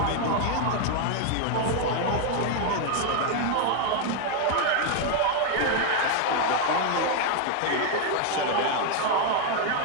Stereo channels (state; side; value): different; both; correlation 0.01